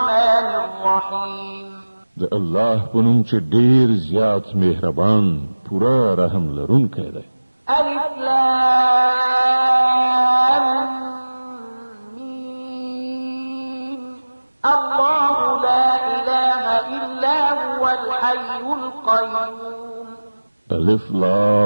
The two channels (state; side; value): inverted; both; correlation -1.00